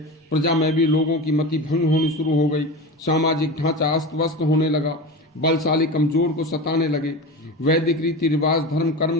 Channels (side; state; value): both; normal; correlation 0.27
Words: प्रजा में भी लोगों की मति भंग होनी शुरू हो गई। सामाजिक ढांचा अस्त व्यस्त होने लगा। बलशाली कमजोर को सताने लगे। वैदिक रीति रिवाज धर्म